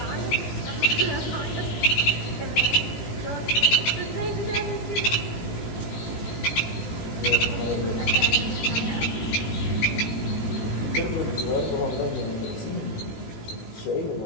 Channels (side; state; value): right; late; 18 ms